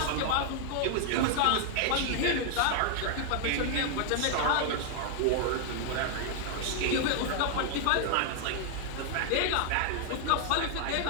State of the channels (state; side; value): different; both; correlation 0.00